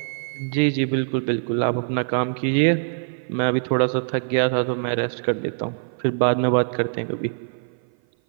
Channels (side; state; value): left; silent; 55 dB below the other